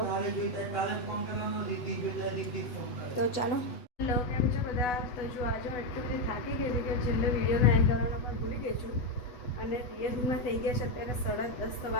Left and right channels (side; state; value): right; late; 8.1 ms